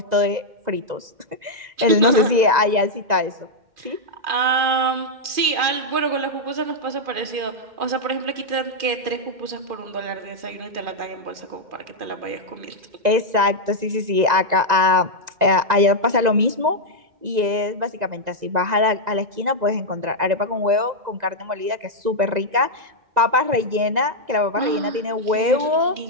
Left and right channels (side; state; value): left; late; 1.9 ms